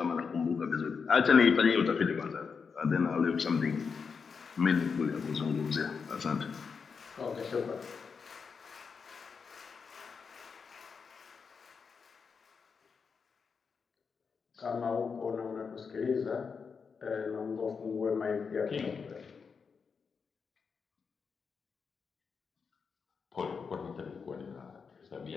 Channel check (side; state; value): right; quieter; 5.6 dB